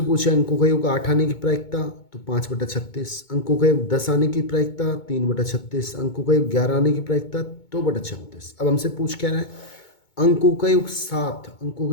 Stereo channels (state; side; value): late; right; 2.2 ms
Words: पूछे अंकों का योग 8 आने की प्रायिकता तो 5/36, अंकों का योग 10 आने की प्रायिकता 3/36, अंकों का योग 11 आने की प्रायिकता 2/36। अब हमसे पूछ क्या रहा है? अंकों का योग 7, अंकों